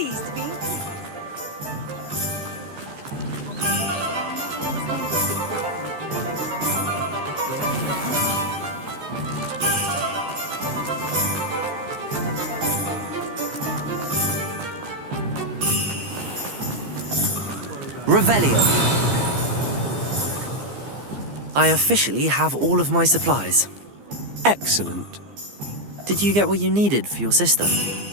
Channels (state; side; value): late; left; 15 ms